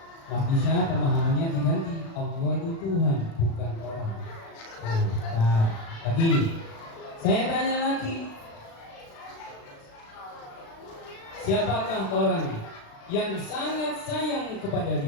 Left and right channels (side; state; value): right; late; 36 ms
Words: Nah, bisa pemahamannya diganti, Allah itu Tuhan, bukan orang. Nah, lagi, saya tanya lagi, siapakah orang yang sangat sayang kepada